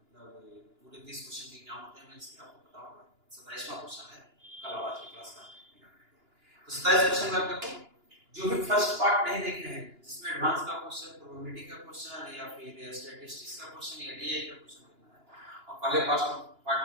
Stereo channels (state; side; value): late; left; 2.9 ms